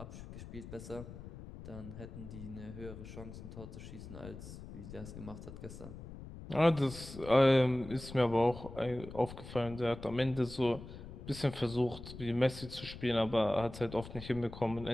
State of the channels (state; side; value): noise; left; rumble, 12 dB below the sound